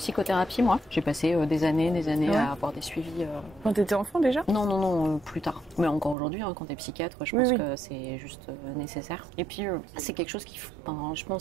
moi. J'ai passé des années à avoir des suivis. Quand t'étais enfant déjà? Non, plus tard. Mais encore aujourd'hui, hein, quand t'es psychiatre, je pense que c'est juste nécessaire. Et puis, c'est quelque chose je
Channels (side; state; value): left; drops out; at 6.2 s